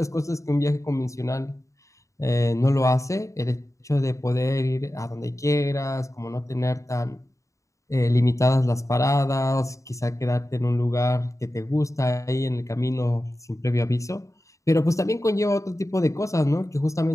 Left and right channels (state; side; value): late; right; 0.15 ms